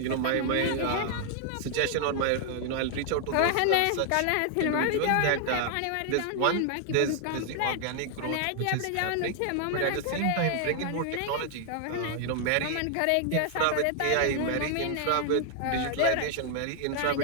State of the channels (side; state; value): both; different; correlation 0.00